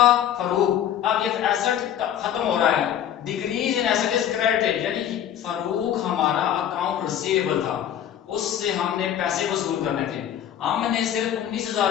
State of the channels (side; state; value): right; quieter; 10.2 dB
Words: फरूक, अब ये एसेट खत्म हो रहा है, decrease in asset is credited, यानी कि फरूक हमारा अकाउंट रिसीवेबल था, उससे हमने पैसे वसूल करने थे। हमने सिर्फ